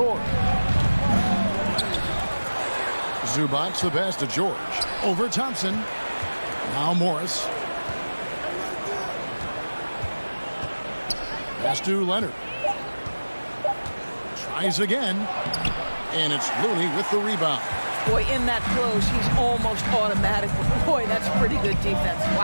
Zubac the pass to George. Over Thompson. Now Morris. Pass to Leonard. Tries again, and it's Looney with the rebound. Boy, in that close, he's almost automatic. Boy, that's pretty good defense.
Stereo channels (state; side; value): inverted; both; correlation -1.00